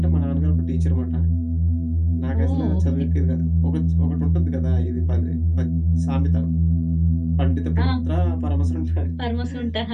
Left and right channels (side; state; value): both; identical; correlation 1.00